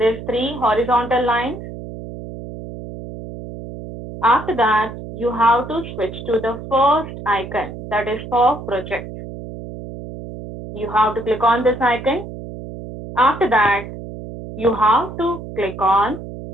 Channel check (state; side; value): noise; right; hum, 11 dB below the sound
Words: 3 horizontal lines. After that, you have to switch to the first icon, that is for project. You have to click on this icon. After that, you have to click on